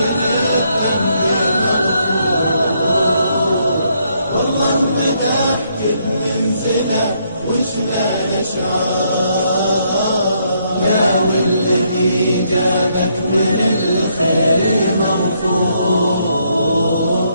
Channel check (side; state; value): both; inverted; correlation -0.73